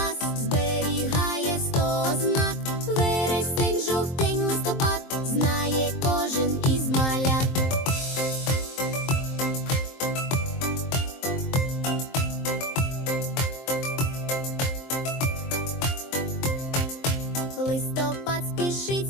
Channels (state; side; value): late; right; 23 ms